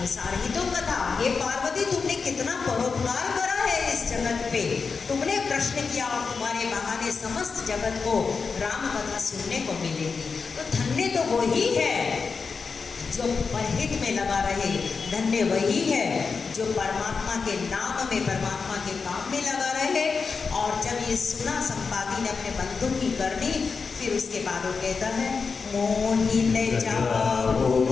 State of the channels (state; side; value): quieter; right; 5.0 dB